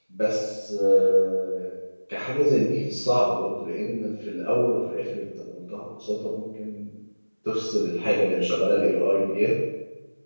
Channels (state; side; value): inverted; both; correlation -1.00